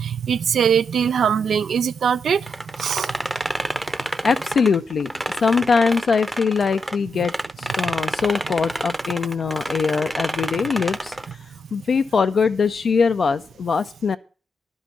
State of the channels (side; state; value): both; normal; correlation 0.82